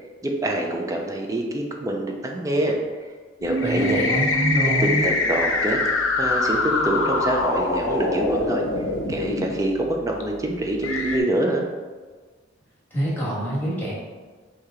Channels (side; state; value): both; normal; correlation 0.41